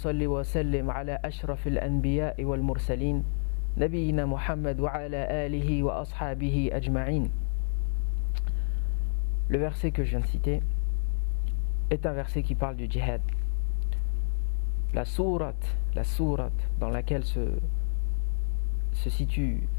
وسلم على أشرف الأنبياء والمرسلين نبينا محمد وعلى آله وأصحابه أجمعين. Le verset que je viens de citer est un verset qui parle du djihad. La sourate dans laquelle se situe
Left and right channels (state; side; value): silent; right; digital silence